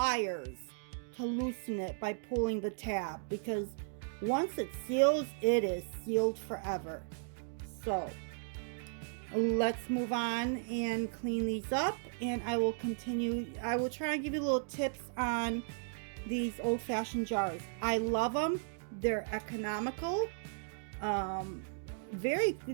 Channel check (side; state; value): left; silent; digital silence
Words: to loosen it by pulling the tab, because once it seals, it is sealed forever. So let's move on and clean these up, and I will continue. I will try and give you little tips on these old-fashioned jars. I love them. They're economical. Very,